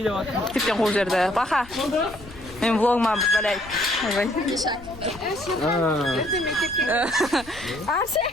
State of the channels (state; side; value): noise; left; rumble, 19 dB below the sound